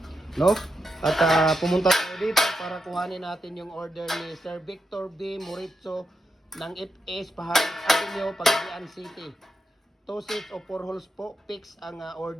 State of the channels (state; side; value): normal; both; correlation 0.85